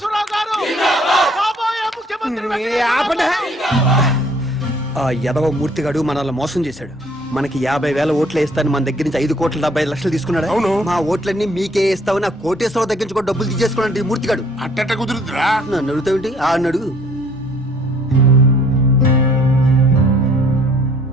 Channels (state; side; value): normal; both; correlation 0.59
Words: గారు కాబోయే ముఖ్యమంత్రి. ఆ యదవ మూర్తిగాడు మనల్ని మోసం చేశాడు. మనకి 50,000 ఓట్లు వేస్తాను మన దగ్గర నుంచి 5,75 లక్షలు తీసుకున్నాడు. అవును. మా ఓట్లన్నీ మీకే వేస్తావు. నా కోటేశ్వరరావు దగ్గర నుంచి కూడా డబ్బులు తీసేసుకున్నాడు ఈ మూర్తిగాడు. అట్టట కుదురుతురా? నన్ను అడుగుతావేంటి? ఆ అడుగు.